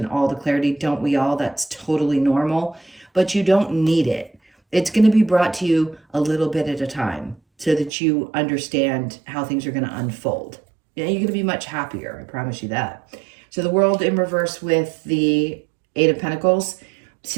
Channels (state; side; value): drops out; left; at 7.9 s